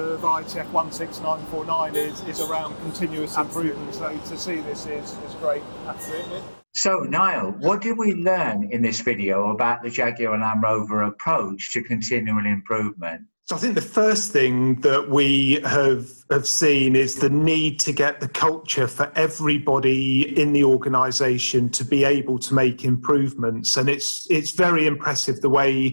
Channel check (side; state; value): both; inverted; correlation -1.00